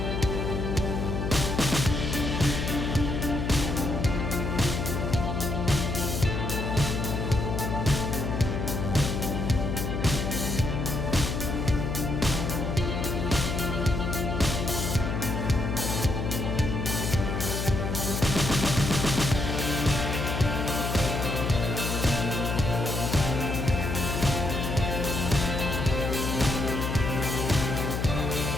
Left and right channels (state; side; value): noise; left; hum, 2 dB below the sound